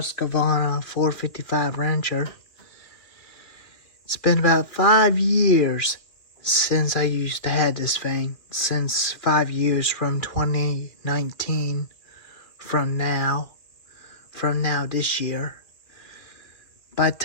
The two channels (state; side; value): late; right; 2.4 ms